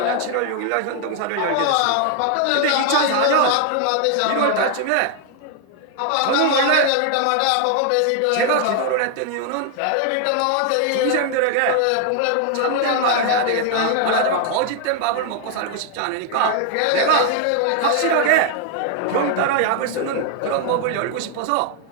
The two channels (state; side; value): different; both; correlation 0.00